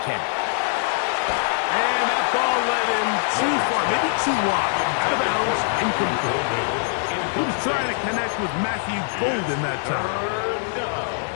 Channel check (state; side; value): silent; right; 62 dB below the other